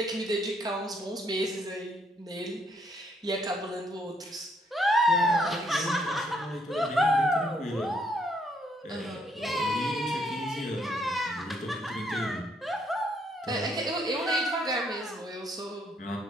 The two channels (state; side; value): normal; both; correlation 0.71